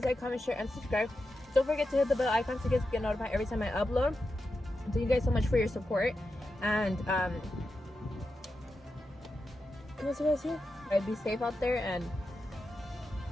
like, comment, share, and subscribe. Don't forget to hit the bell icon so you guys get notified every time I upload. Thank you guys so much for your support. And I'd be safe out there, and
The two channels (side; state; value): both; normal; correlation 0.89